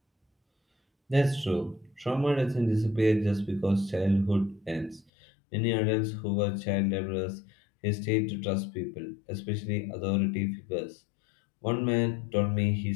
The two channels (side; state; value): right; drops out; at 5.1 s